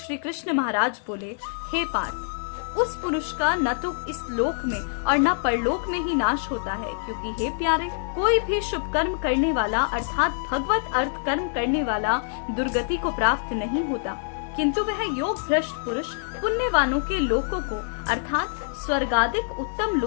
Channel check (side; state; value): right; silent; 61 dB below the other